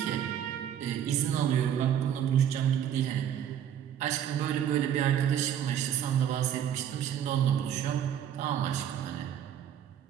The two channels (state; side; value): quieter; left; 9.7 dB